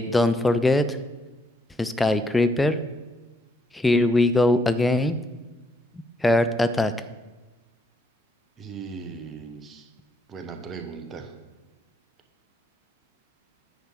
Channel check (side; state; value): both; normal; correlation 0.75